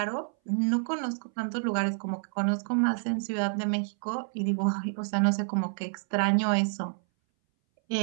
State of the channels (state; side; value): silent; left; 59 dB below the other